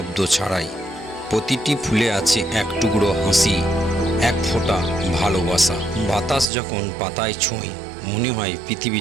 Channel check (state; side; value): drops out; left; at 6.5 s